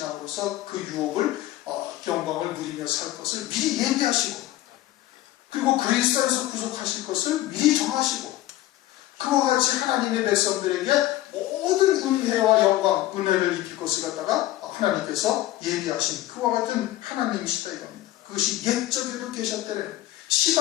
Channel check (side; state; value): right; quieter; 15.4 dB